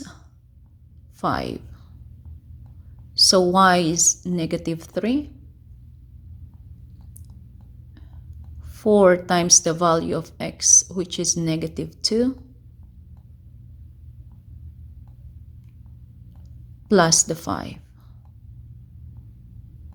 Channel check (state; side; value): identical; both; correlation 1.00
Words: 5. So y is negative 3. 4 times the value of x, which is negative 2, plus the 5.